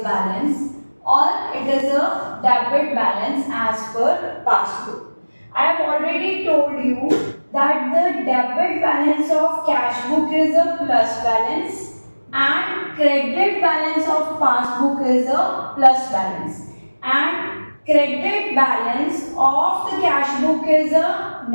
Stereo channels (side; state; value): both; inverted; correlation -1.00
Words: balance or it is a debit balance as per passbook. I have already told you that the debit balance of cash book is a plus balance and credit balance of passbook is a plus balance, and credit balance of the cash book is a